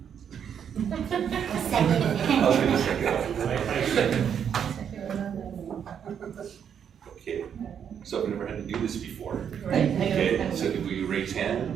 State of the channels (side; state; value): left; quieter; 8.2 dB